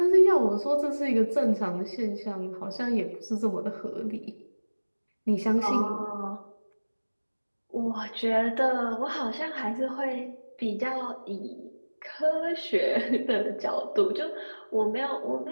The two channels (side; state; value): both; inverted; correlation -1.00